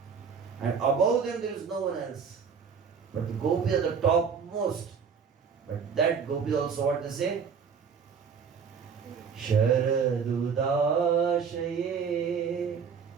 And above them there is no one else. But the gopis are the topmost. But that gopis also what they say? Sharadudashaye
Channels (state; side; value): quieter; left; 6.3 dB